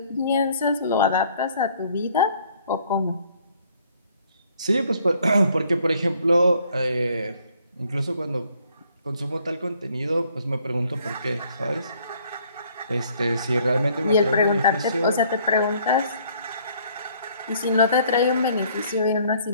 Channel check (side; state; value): both; inverted; correlation -0.62